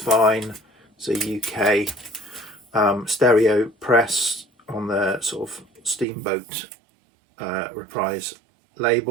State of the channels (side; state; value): left; drops out; at 6.1 s